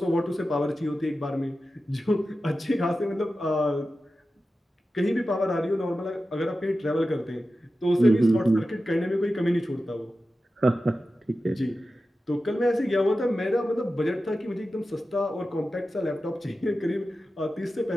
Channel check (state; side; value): normal; both; correlation 0.93